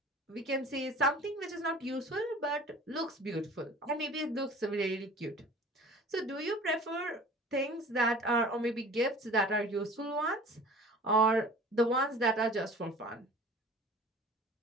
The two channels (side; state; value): both; normal; correlation 0.44